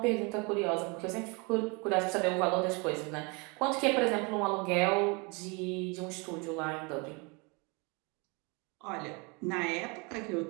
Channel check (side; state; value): left; quieter; 30.3 dB